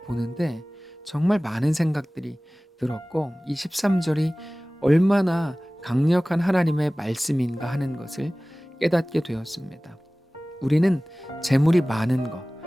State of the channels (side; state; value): both; normal; correlation 0.98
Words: 보는데 정말 많은 생각들이 들었고 이 13절이 얼마나 강력한 하나님의 말씀인가 하는 것을 깨닫게 되었습니다. 우리는 재물이 많은 것,